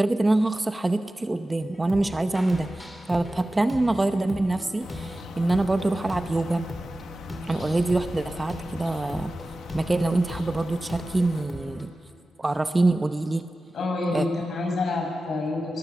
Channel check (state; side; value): normal; both; correlation 0.95